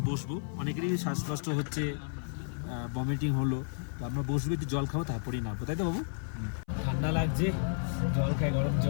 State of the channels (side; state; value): right; silent; 55 dB below the other